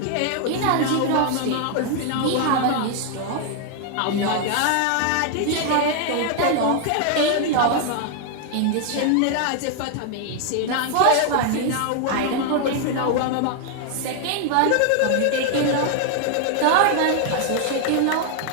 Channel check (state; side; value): different; both; correlation 0.00